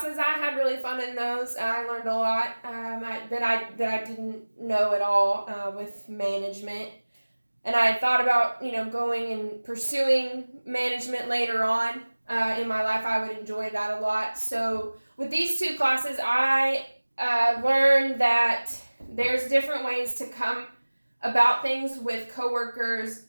I had really fun in those. I learned a lot that I didn't know at all with management. And I thought about, going and pursuing management later on in my life. I would enjoy that a lot. So with these two classes, I learned that there's different ways to come about things with coworkers,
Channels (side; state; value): both; inverted; correlation -1.00